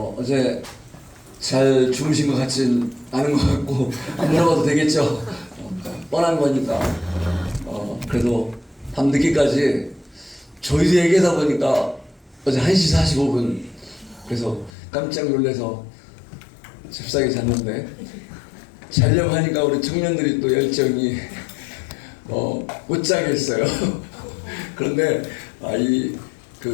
어제 잘 주무신 것 같진 않은 것 같고 안 물어봐도 되겠죠. 뻔한 거니까. 그래도 밤늦게까지 저희도 얘기하다 보니까 어제 1시 45분 그래서 깜짝 놀라서 잽싸게 잤는데 자려고 하니까 우리 청년들이 또 열정이 못 자겠어요. 그런데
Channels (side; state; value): right; drops out; at 14.7 s